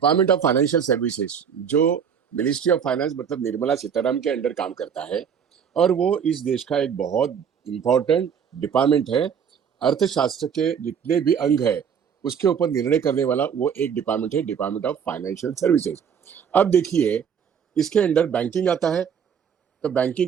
ऑफ फाइनेंशियल सर्विसेज जो मिनिस्ट्री ऑफ फाइनेंस मतलब निर्मला सीतारामन के अंडर काम करता है और वो इस देश का एक बहुत इंपॉर्टेंट डिपार्टमेंट है। अर्थशास्त्र के जितने भी अंग है उसके ऊपर निर्णय करने वाला वो एक डिपार्टमेंट है, डिपार्टमेंट ऑफ फाइनेंशियल सर्विसेज। अब देखिए इसके अंडर बैंकिंग आता है, तो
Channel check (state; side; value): quieter; left; 7.5 dB